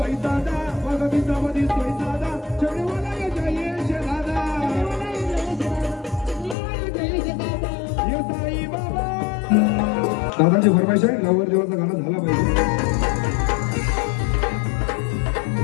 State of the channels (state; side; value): drops out; right; at 6.6 s